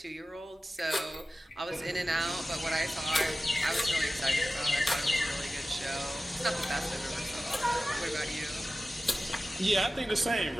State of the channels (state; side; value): normal; both; correlation 0.96